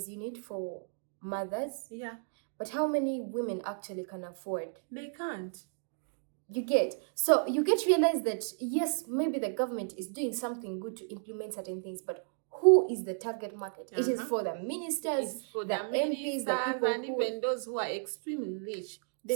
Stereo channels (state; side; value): silent; left; digital silence